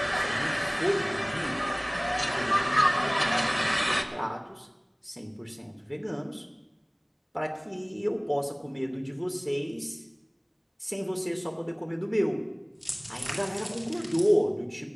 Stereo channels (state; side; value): identical; both; correlation 1.00